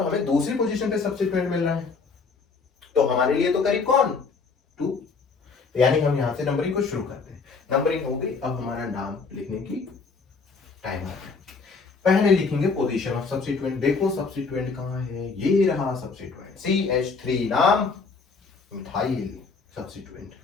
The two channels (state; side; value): quieter; right; 4.7 dB